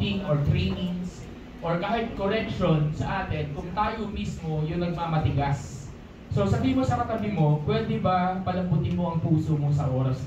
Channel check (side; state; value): both; identical; correlation 1.00